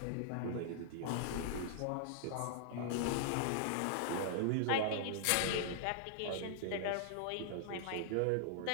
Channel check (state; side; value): different; both; correlation -0.01